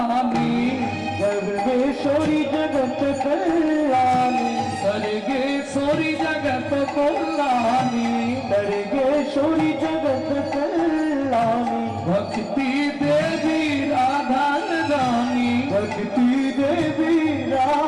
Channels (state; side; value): identical; both; correlation 1.00